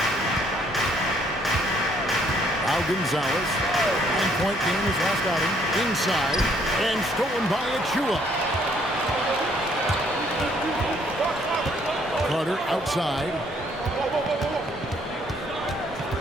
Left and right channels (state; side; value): normal; both; correlation 0.66